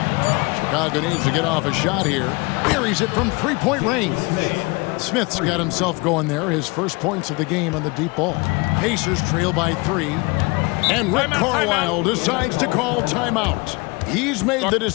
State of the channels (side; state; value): right; quieter; 26.8 dB